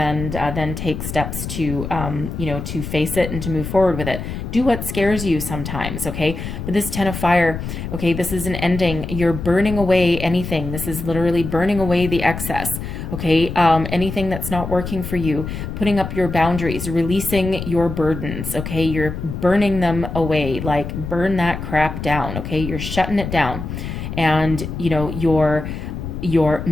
then take steps to, to face it and to move forward with it. Do what scares you sometimes, okay? But this 10 of fire, okay, this is an ending. You're burning away anything. This is literally burning away the excess, okay? Anything that's not working for you, putting up your boundaries, releasing your burdens, okay? You're burning them away, like burn that crap down, okay? You're shutting it down. And, you're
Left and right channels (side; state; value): left; noise; rumble, 6 dB below the sound